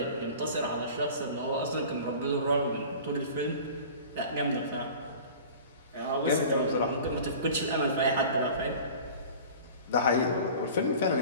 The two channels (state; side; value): inverted; both; correlation -0.40